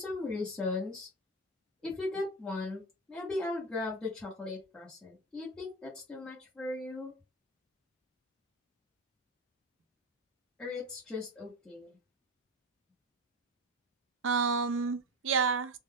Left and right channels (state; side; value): normal; both; correlation 0.21